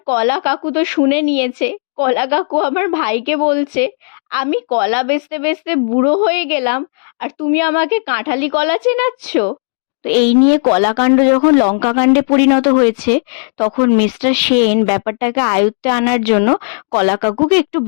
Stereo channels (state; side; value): silent; right; digital silence